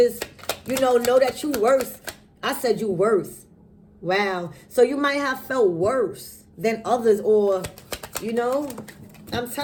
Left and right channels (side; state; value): both; identical; correlation 1.00